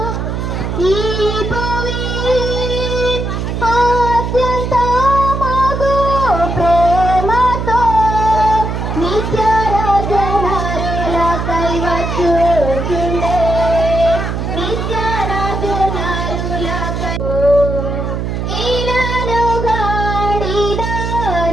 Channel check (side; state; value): right; noise; hum, 3 dB below the sound